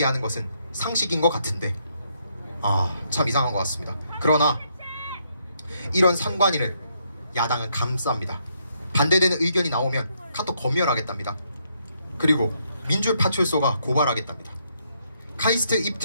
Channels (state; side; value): inverted; both; correlation -0.75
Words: 것은 상식인 것 같은데 참 이상한 것 같습니다. 그러나 이런 선관위를 야당은 감쌉니다. 반대되는 의견이 나오면 카톡 검열하겠답니다. 그리고 민주파출소가 고발하겠답니다. 카이스트